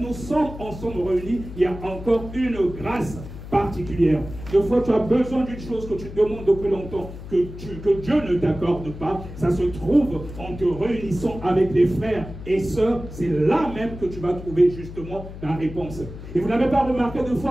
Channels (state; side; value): noise; left; hum, 12 dB below the sound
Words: sommes ensemble réunis, il y a encore une grâce particulière. Des fois, tu as besoin d'une chose que tu demandes depuis longtemps, que Dieu ne t'accorde pas. Ça se trouve en te réunissant avec les frères et sœurs. C'est là même que tu vas trouver justement la réponse. Et vous n'avez pas remarqué, des